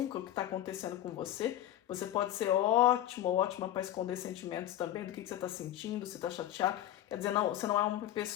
o que está acontecendo com você. Você pode ser ótimo ou ótima para esconder sentimentos também, do que você está sentindo, se está chateado. Quer dizer, não, você não é uma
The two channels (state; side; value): quieter; right; 12.5 dB